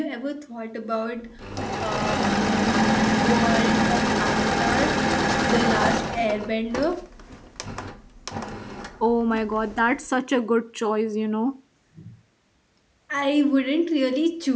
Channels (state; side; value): identical; both; correlation 1.00